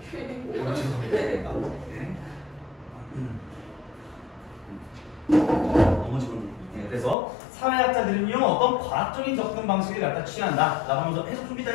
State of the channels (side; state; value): right; drops out; at 7.2 s